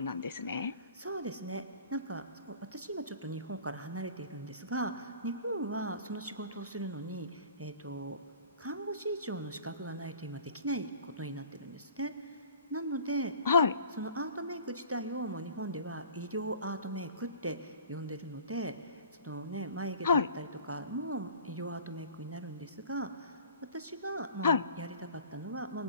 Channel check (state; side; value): inverted; both; correlation -0.45